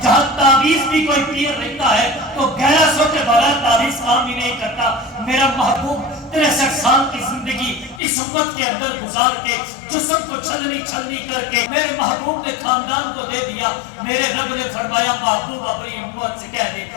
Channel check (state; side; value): drops out; right; at 8.0 s